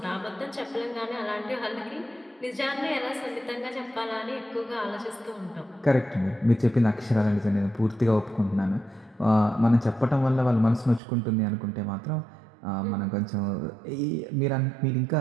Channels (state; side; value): drops out; left; at 11.0 s